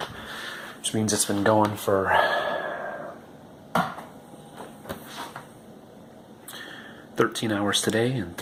which means it's been going for 13 hours today and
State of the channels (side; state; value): both; identical; correlation 1.00